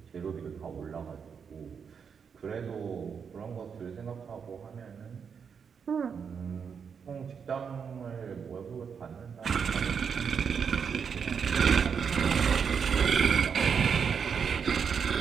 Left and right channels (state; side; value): quieter; left; 6.6 dB